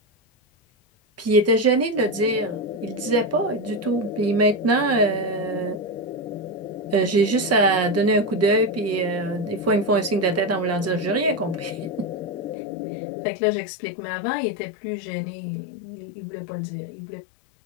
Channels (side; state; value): right; drops out; at 12.6 s